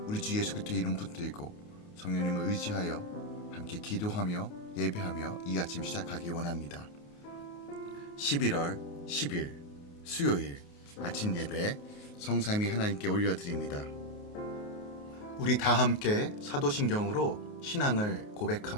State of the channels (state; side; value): late; right; 28 ms